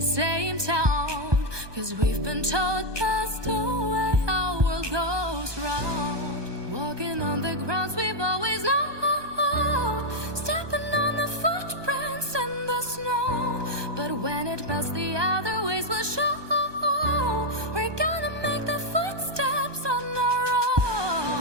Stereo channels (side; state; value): left; late; 1.2 ms